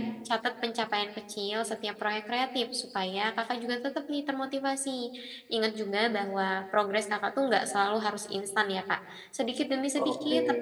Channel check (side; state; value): both; identical; correlation 1.00